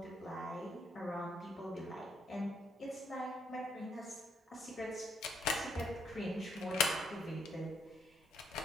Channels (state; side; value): normal; both; correlation 0.72